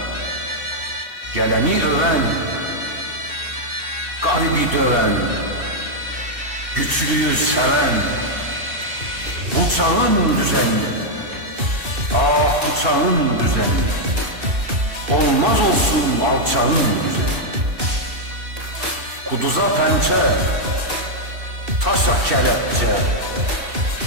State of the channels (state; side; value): late; left; 2.6 ms